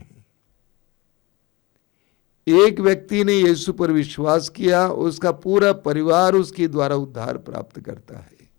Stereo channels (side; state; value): right; quieter; 23.2 dB